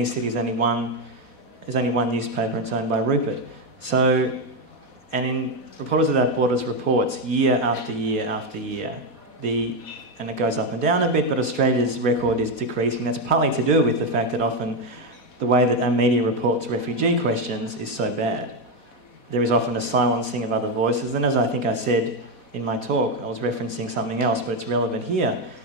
cities there's only one newspaper and it's owned by Rupert. So, and in Reporters Without Borders reports year after year after year, and it goes up and down a bit, but Australia's record is decreasing. That's partly to do with the fact that often the way that our media reports refugee questions is so bad. There is often a silencing of other voices, and as I think I said in my talk, I was referencing something else, but it's relevant here.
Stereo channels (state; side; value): late; right; 4.1 ms